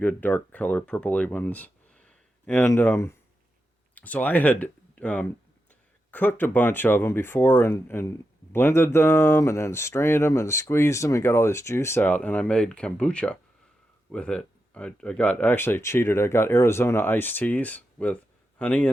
dark color, purpley ones. And so I had um, cooked a bunch of them before and blended them and then strained them and squeezed them and got all this juice out. And I made kombucha with it. I got actually cheated. I got Arizona iced teas with honey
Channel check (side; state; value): both; normal; correlation 0.88